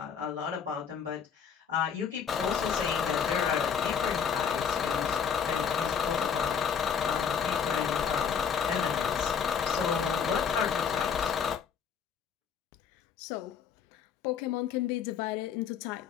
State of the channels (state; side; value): quieter; right; 7.1 dB